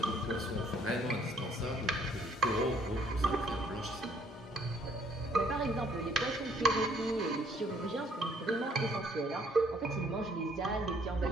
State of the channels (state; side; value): normal; both; correlation 0.64